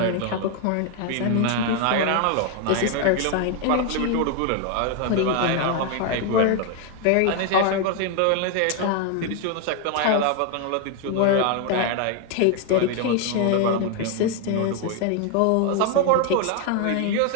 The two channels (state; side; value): different; both; correlation 0.01